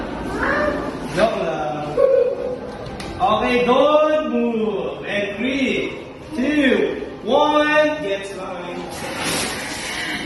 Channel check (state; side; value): identical; both; correlation 1.00